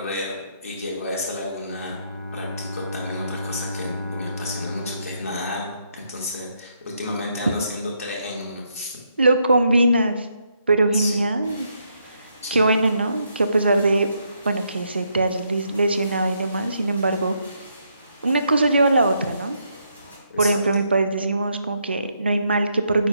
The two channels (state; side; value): inverted; both; correlation -0.76